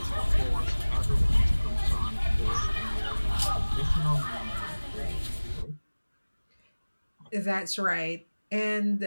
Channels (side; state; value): both; inverted; correlation -1.00